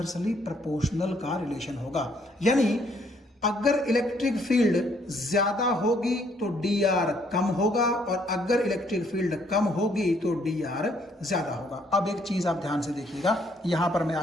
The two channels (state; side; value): normal; both; correlation 0.67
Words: प्रोपोर्शनल का रिलेशन होगा। यानी अगर इलेक्ट्रिक फील्ड ज्यादा होगी तो dr कम होगा, और अगर इलेक्ट्रिक फील्ड कम होगी तो dr ज्यादा होगा। अब एक चीज आप ध्यान से देखिएगा, यहां पर मैं